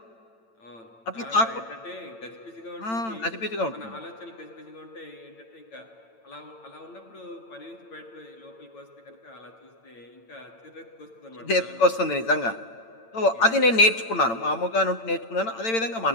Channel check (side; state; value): right; late; 8.9 ms